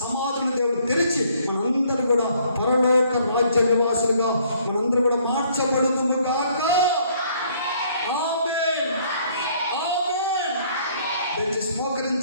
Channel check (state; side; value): inverted; both; correlation -0.63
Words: సమాధులను దేవుడు తెరిచి మనందరూ కూడా పరలోక రాజ్య నివాసులుగా మనందరూ కూడా మార్చబడుదుము గాక. ఆమేన్, ఆమేన్. దయచేసి